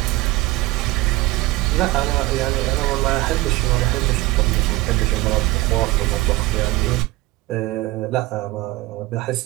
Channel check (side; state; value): left; quieter; 19.7 dB